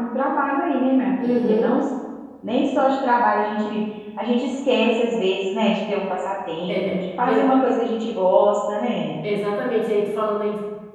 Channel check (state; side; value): identical; both; correlation 1.00